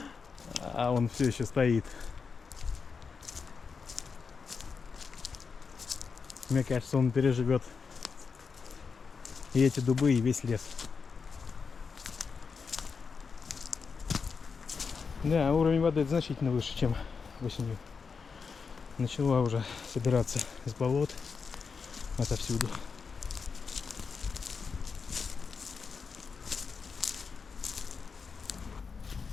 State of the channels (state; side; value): quieter; right; 5.4 dB